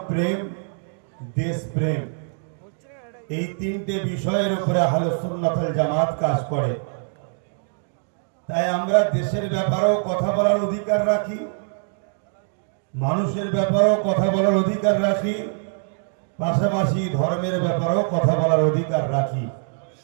প্রেম, দেশপ্রেম, এই তিনটে বিষয়ের উপরে আহলে সুন্নাত ওয়াল জামাত কাজ করে। তাই আমরা দেশের ব্যাপারেও কথা বলার অধিকার রাখি, মানুষের ব্যাপারেও কথা বলার অধিকার রাখি, পাশাপাশি ধর্মের ব্যাপারেও কথা বলার অধিকার রাখি।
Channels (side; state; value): left; silent; digital silence